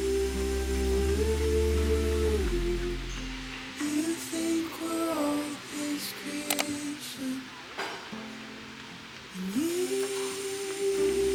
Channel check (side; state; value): both; identical; correlation 1.00